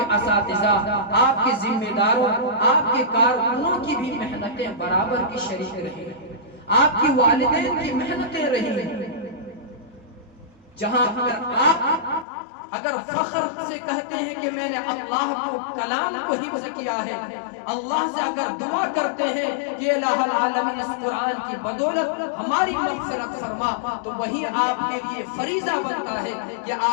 اساتذہ، آپ کے ذمہ داروں، آپ کے کارکنوں کی بھی محنتیں برابر کی شریک رہی ہیں، آپ کی والدین کی محنتیں رہی ہیں۔ جہاں اگر فخر سے کہتے ہیں کہ میں نے اللہ کو کلام کو حفظ کیا ہے، اللہ سے اگر دعا کرتے ہیں کہ الہ العالمین اس قرآن کی بدولت ہماری مغفرت فرما، تو وہی آپ کے لیے فریضہ بنتا ہے کہ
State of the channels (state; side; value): drops out; right; at 12.2 s